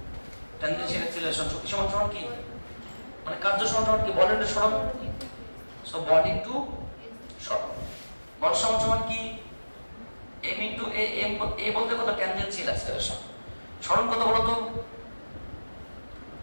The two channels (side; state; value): both; inverted; correlation -1.00